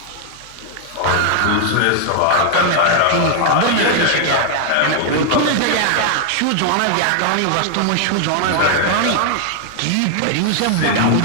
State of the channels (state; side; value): different; both; correlation 0.00